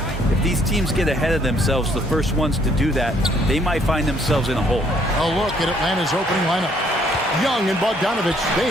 If these teams get ahead of themselves, the first ones to do that, they might find themselves in a hole. A look at Atlanta's opening lineup. Young and Bogdanovich, they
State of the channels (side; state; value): both; normal; correlation 0.66